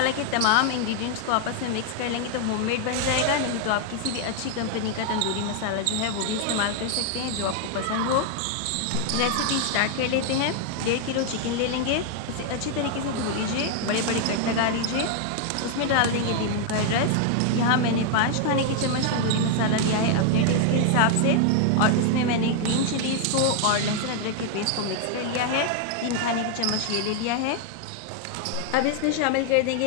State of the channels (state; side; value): different; both; correlation 0.00